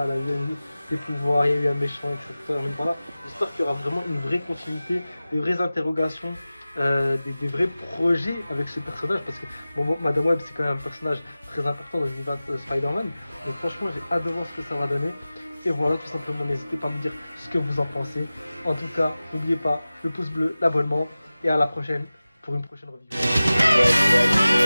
il y a eu des pouvoirs, il y a eu un méchant, etc. Voilà. J'espère qu'il y aura vraiment une vraie continuité, des vraies interrogations. Des vrais projets avec ce personnage parce que bon, Madame Web c'est quand même un personnage très important dans l'univers de Spider-Man, donc franchement j'ai hâte de voir ce que ça va donner. Et voilà, tout simplement, n'hésitez pas à me dire ce que vous en pensez. En tout cas, n'oubliez pas le pouce bleu, l'abonnement et à la prochaine pour une prochaine review.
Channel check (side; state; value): both; inverted; correlation -0.97